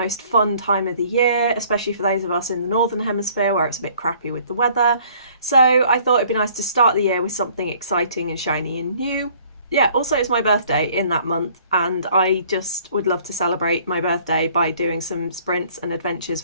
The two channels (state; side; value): inverted; both; correlation -0.57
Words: fun time of the year, especially for those of us in the Northern Hemisphere where it's a bit crappy with the weather. So I thought it'd be nice to start the year with something exciting and shiny and new. Yeah, also it's my birthday in that month, and I just would love to celebrate my birthday by doing some sprints and adventures